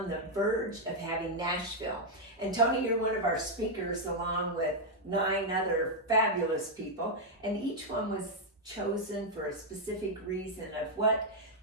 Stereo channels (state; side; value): normal; both; correlation -0.02